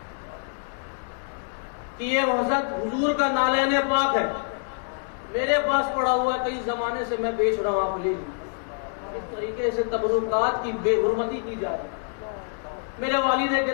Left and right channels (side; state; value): right; silent; 61 dB below the other